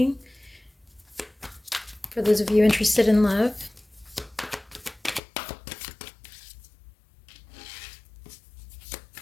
for those of you interested in love.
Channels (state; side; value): drops out; right; at 5.2 s